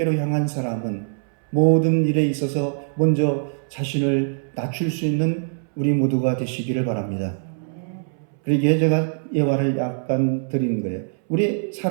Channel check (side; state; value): left; silent; 64 dB below the other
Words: 향한 사람은 모든 일에 있어서 먼저 자신을 낮출 수 있는 우리 모두가 되시기를 바랍니다. 그러기에 제가 예화를 약간 드리는 거예요. 우리